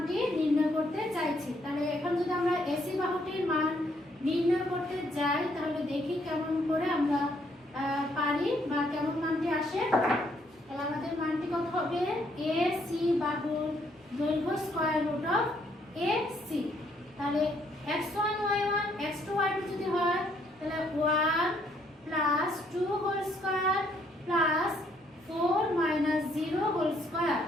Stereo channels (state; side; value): normal; both; correlation 0.69